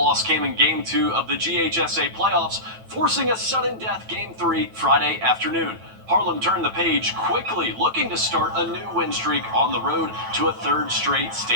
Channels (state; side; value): late; left; 9.1 ms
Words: came in Game 2 of the GHSA playoffs, forcing a sudden death Game 3 Friday afternoon. Harlem turned the page quickly, looking to start a new win streak on the road to a third straight